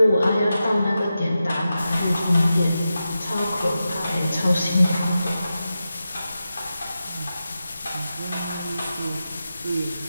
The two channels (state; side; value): inverted; both; correlation -0.91